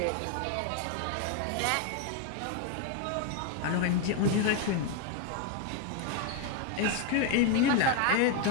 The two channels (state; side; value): different; both; correlation 0.01